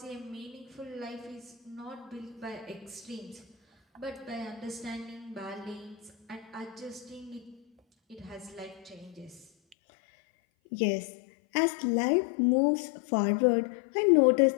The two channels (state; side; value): drops out; right; at 9.8 s